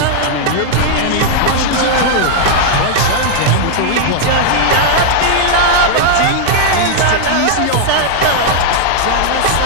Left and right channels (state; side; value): different; both; correlation 0.00